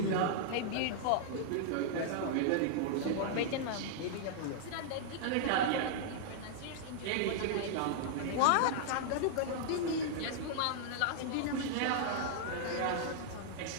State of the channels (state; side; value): different; both; correlation -0.01